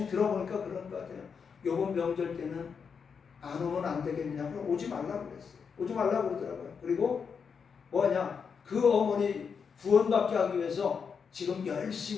들어보니까 그런 것 같아요. 요번 명절 때는 안 오면 안 되겠냐, 그럼 오지 말라고 그랬어요. 오지 말라고 그러더라고요. 그리고 뭐냐, 그 어머니 구원받게 하기 위해서 지금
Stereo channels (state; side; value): quieter; right; 6.2 dB